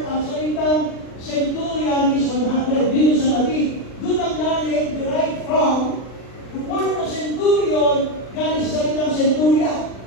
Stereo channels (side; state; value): right; late; 39 ms